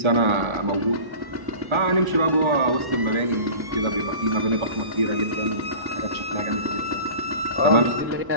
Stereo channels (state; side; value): late; left; 1.1 ms